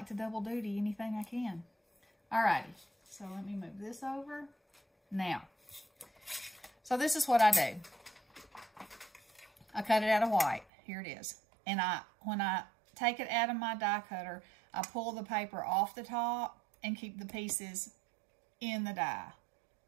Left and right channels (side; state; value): left; drops out; at 10.7 s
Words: to double duty anything I can. Alrighty, so let me move this over. Now, so this is what I do. I cut it out of white. Here it is. And when I take it out of my die cutter, I pull the paper off the top and keep the pieces in the die.